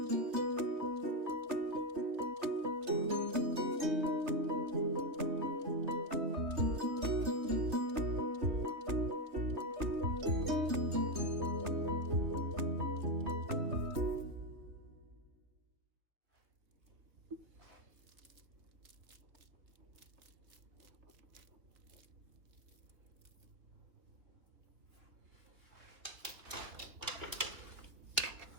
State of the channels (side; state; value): left; late; 3.1 ms